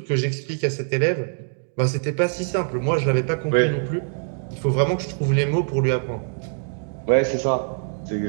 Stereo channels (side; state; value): left; silent; 58 dB below the other